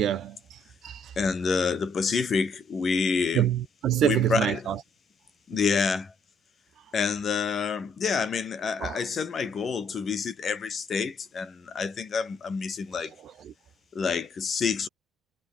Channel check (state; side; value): normal; both; correlation 0.68